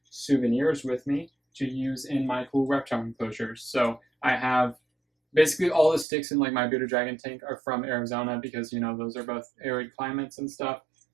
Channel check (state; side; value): drops out; left; at 6.1 s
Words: souvenirs with me to use in my cool reptile enclosures. So I have basically all the sticks in like my bearded dragon tank are from Arizona because, you know, those are both arid climates and stuff.